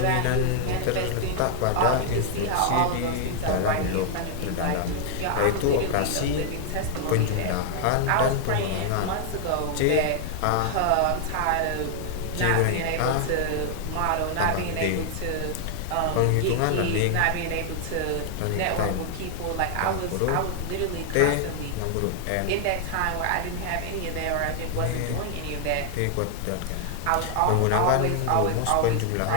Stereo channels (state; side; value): different; both; correlation 0.00